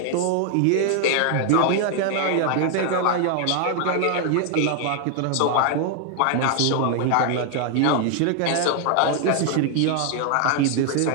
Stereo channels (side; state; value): both; different; correlation 0.00